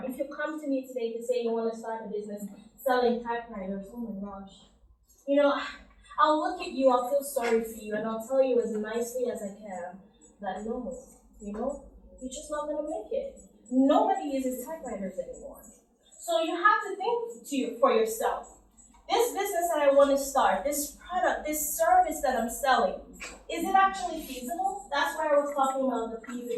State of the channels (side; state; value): both; identical; correlation 1.00